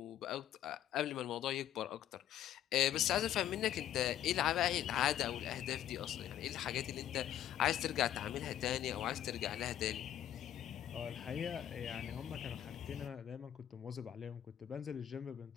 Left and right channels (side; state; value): right; quieter; 11.3 dB